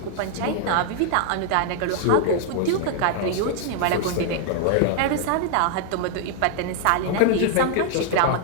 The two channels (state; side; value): different; both; correlation 0.00